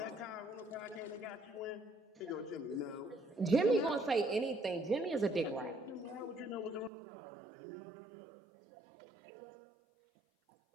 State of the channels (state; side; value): drops out; left; at 6.9 s